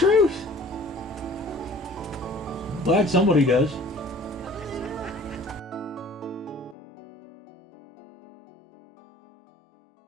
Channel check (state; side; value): drops out; right; at 6.8 s